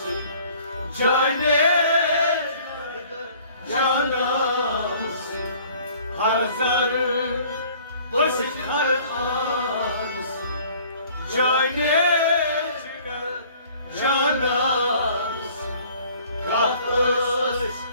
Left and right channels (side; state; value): both; inverted; correlation -0.54